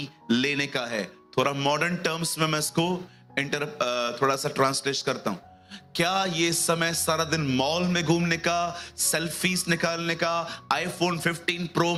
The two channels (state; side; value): identical; both; correlation 1.00